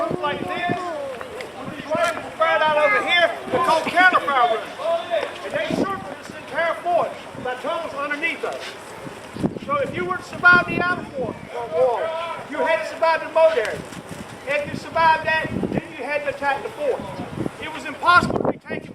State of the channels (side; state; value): both; identical; correlation 1.00